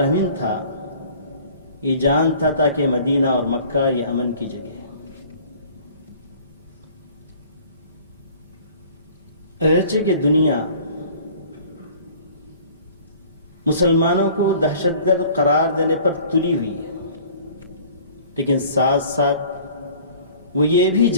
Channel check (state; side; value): inverted; both; correlation -0.50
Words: تھا، یہ جانتا تھا کہ مدینہ اور مکہ یہ امن کی جگہ ہے۔ اگرچہ کہ دنیا مسلمانوں کو دہشت گرد قرار دینے پر تلی ہوئی ہے، لیکن ساتھ ساتھ وہ یہ بھی